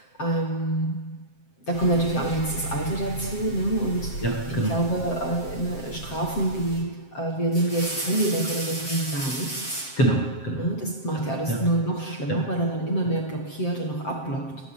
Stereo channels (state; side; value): late; right; 7.6 ms